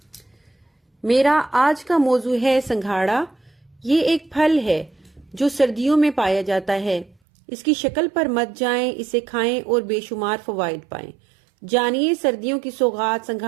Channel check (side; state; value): left; drops out; at 7.2 s